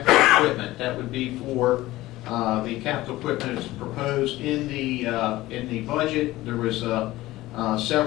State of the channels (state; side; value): quieter; right; 17.4 dB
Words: equipment. That would be for the capital equipment that's proposed in the budget. There was